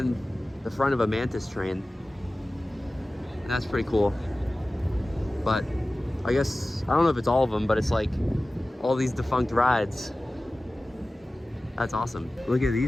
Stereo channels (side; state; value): both; normal; correlation 0.97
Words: the front of a Mantis train. And that's pretty cool. But I guess, I don't know if it's all of them, but it's like all these defunct rides. That's awesome. Look at